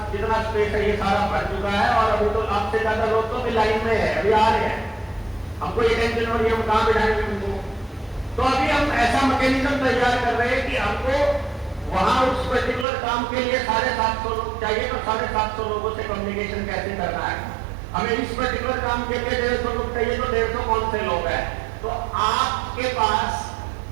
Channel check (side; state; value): left; drops out; at 12.9 s